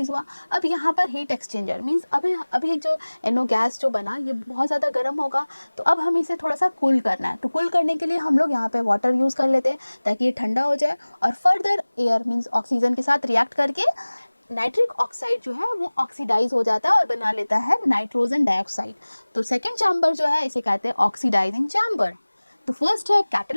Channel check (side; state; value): both; inverted; correlation -1.00